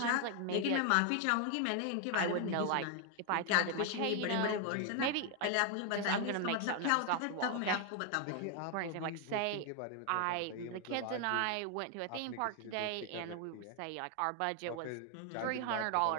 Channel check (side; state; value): both; different; correlation 0.00